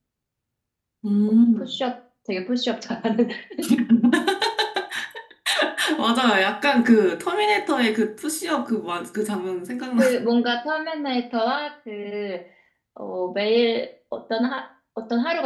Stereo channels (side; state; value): both; identical; correlation 1.00